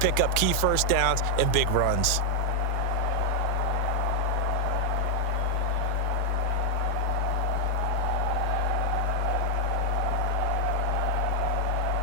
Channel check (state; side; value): different; both; correlation 0.00